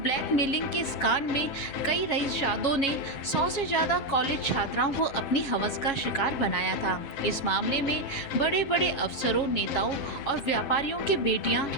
ब्लैकमेलिंग के इस कांड में कई रईसजादों ने 100 से ज्यादा कॉलेज छात्राओं को अपनी हवस का शिकार बनाया था। इस मामले में बड़े बड़े अफसरों, नेताओं और व्यापारियों की बेटियां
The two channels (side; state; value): right; late; 7.7 ms